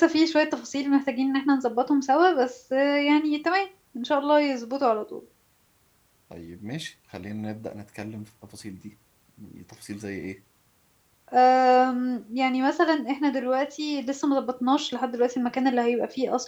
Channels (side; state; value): both; identical; correlation 1.00